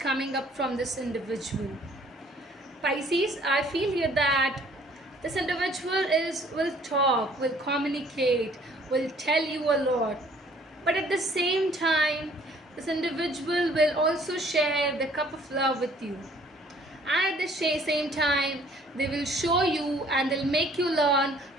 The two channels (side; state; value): both; normal; correlation 0.58